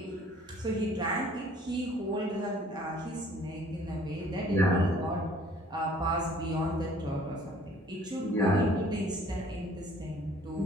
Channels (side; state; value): both; normal; correlation 0.55